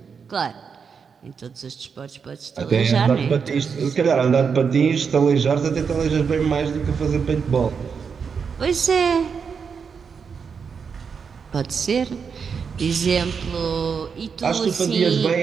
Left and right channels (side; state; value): left; quieter; 6.1 dB